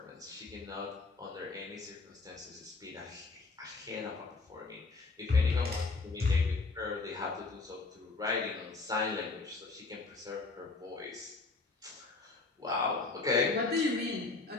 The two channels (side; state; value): right; quieter; 3.8 dB